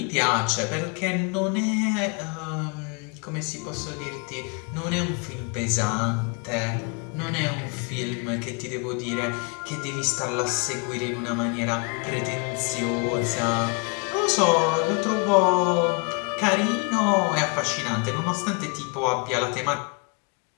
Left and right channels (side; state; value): right; quieter; 33.3 dB